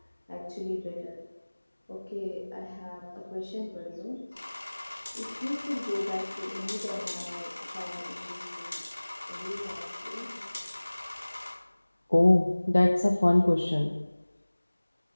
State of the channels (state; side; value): inverted; both; correlation -1.00